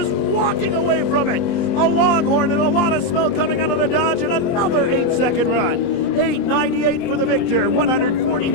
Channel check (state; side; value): late; right; 23 ms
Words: walking away from it. A Longhorn and a lot of smoke coming out of the Dodge and another 8-second run. 8.98 for the victor,